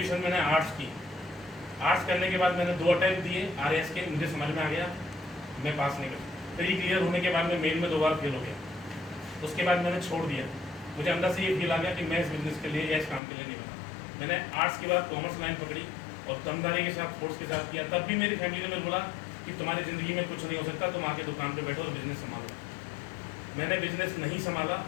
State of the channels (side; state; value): right; drops out; at 13.2 s